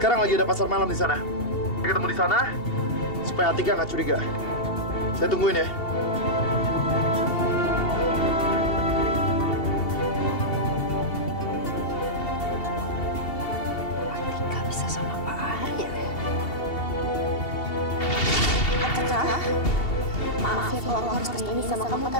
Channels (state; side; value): late; right; 2.7 ms